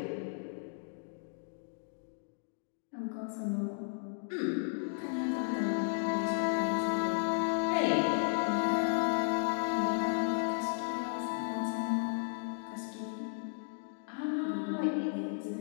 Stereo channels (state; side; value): silent; right; digital silence